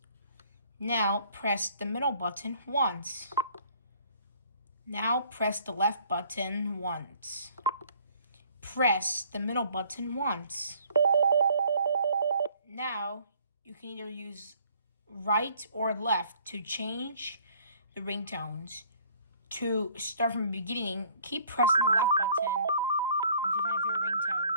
Now press the middle button once. Now press the left button once. Press the middle button once. Now you can either use right or left to change the ringtones. To start from the beginning, keep pressing the left button until you find your favorite ringtone.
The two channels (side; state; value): both; inverted; correlation -0.58